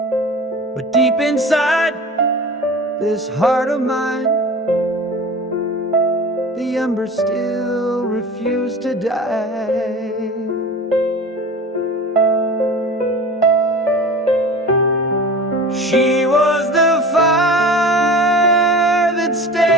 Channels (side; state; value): both; normal; correlation 0.36